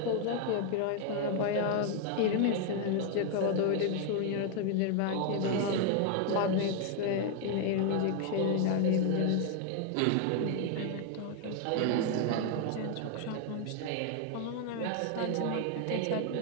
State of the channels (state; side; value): different; both; correlation 0.00